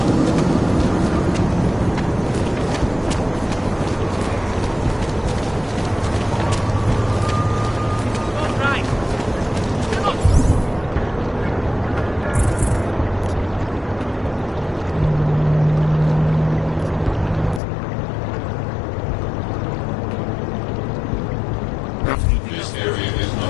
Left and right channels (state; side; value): drops out; right; at 17.6 s